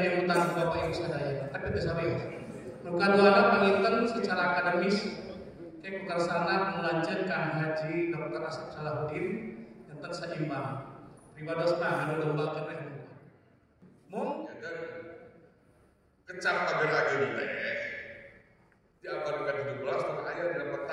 utang Bapak Ibu sadaya tapi teu sabeos nu kaduana panginten secara akademis teh kukarsana melanjutkan Kang Haji Dr. Asep Salahuddin enten saimbang pribadosna anu lomba keneh mung kecap pager ageun teh di abad ke-17 teh aya dina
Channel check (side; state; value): both; identical; correlation 1.00